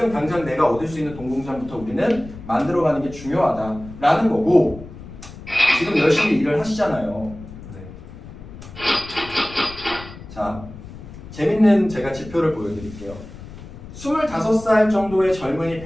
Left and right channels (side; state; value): left; noise; rumble, 15 dB below the sound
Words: 당장 내가 얻을 수 있는 돈공장부터 우리는 만들어가는 게 중요하다라는 거고 지금 열심히 일을 하시잖아요. 자, 재밌는 제가 지표를 보여드릴게요. 25살 정도의 젊은이